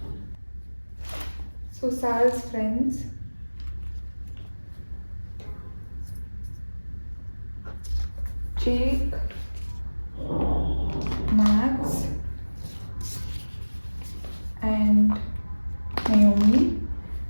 So Sal's friends, Jake, Max, and Naomi.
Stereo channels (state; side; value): inverted; both; correlation -1.00